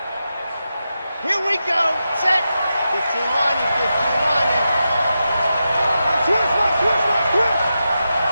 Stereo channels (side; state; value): both; inverted; correlation -0.89